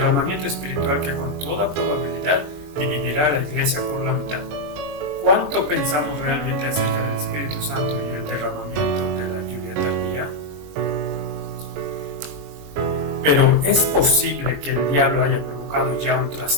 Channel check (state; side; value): late; left; 22 ms